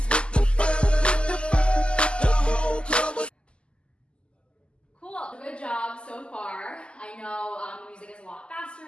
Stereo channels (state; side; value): late; right; 0.051 ms